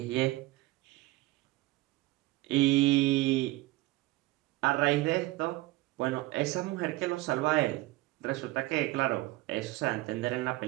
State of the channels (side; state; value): left; quieter; 19.6 dB